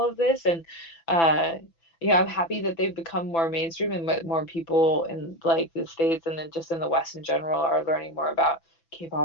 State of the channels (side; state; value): right; late; 6.0 ms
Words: of this. And I'm happy that they've become more mainstream and more people in like the States and then just in the West in general are learning more about